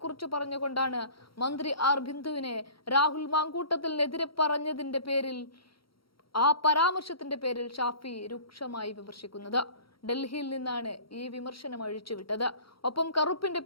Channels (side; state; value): right; late; 0.74 ms